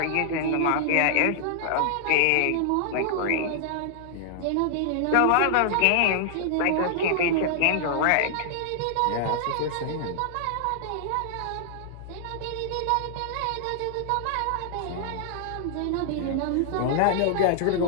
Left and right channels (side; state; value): both; different; correlation -0.01